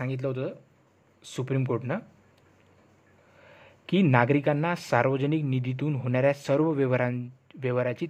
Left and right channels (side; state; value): both; identical; correlation 1.00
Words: होतं सुप्रीम कोर्टनं की नागरिकांना सार्वजनिक निधीतून होणाऱ्या सर्व व्यवहाराची